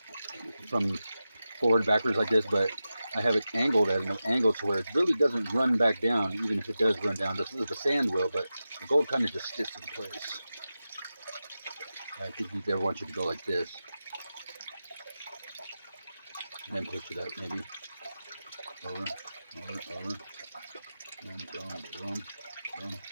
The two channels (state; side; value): inverted; both; correlation -0.92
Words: from forward backwards like this, but I have it angled at an angle to where it really doesn't run back down, even if it does run down. The sand will, but the gold kind of just sits in place. I think we never want you to go like this. And then push it up, maybe. Over. Boom.